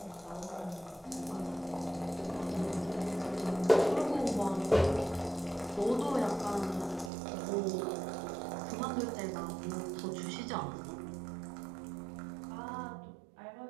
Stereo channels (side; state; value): left; drops out; at 7.1 s